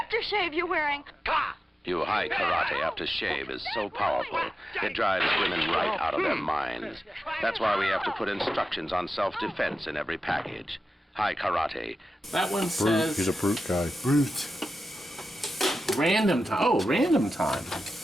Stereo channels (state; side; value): normal; both; correlation 0.92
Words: aftershave you're wearing? You high karate aftershave is so powerful, it drives women right out of their minds. That's why we have to put instructions on self-defense in every package. High karate. That one Brute. says He's a brute guy. Brute. random time. Oh, random time.